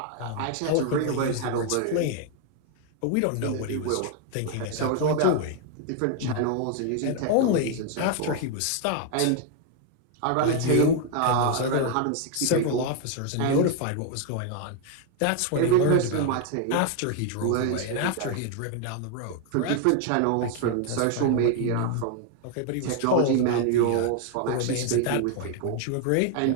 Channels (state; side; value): different; both; correlation 0.00